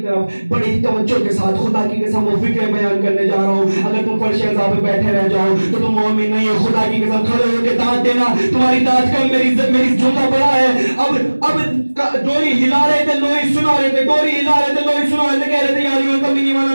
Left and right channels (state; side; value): inverted; both; correlation -1.00